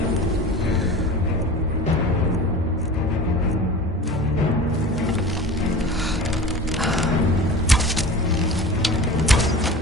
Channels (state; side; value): normal; both; correlation 0.36